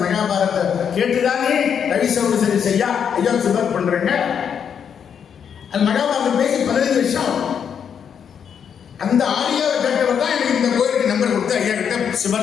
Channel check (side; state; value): right; quieter; 7.7 dB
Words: மகாபாரத்தை கேட்டுதானே ரவி சௌரி செய்யா ஐயா சுபர் பண்றேங்க. அந்த மகாபாரதம் பேசி 15 வருஷம். அந்த ஆடியோவை கேட்டவர் தான் எனக்கு இந்த கோயிலுக்கு நம்பர் கொடுத்து ஐயா கிட்ட